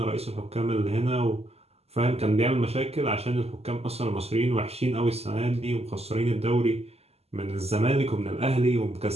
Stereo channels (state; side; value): late; left; 0.30 ms